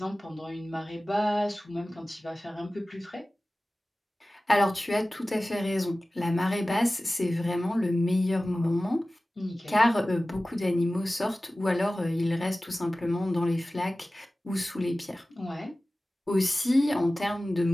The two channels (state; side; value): normal; both; correlation 0.97